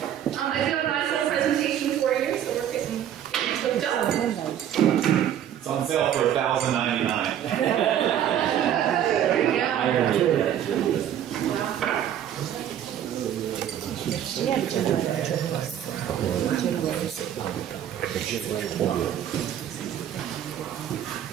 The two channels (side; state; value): left; quieter; 10.3 dB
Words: I do have a nice little presentation for you, so we're getting hooked up. It's on sale for $1,099. Yes,